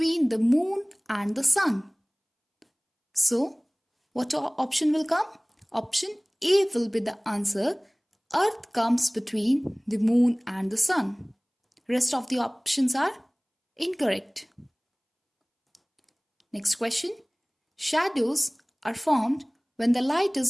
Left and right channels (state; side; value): identical; both; correlation 1.00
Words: the moon and the sun. So, what option will come? Option A will be the answer. Earth comes between the moon and the sun. Rest of the options are incorrect. Next question. Shadows are formed when the light